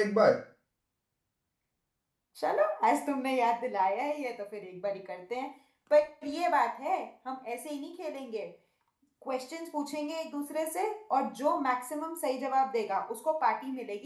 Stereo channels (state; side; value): identical; both; correlation 1.00